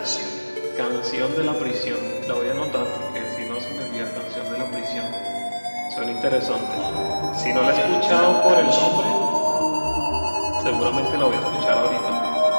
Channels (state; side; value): inverted; both; correlation -1.00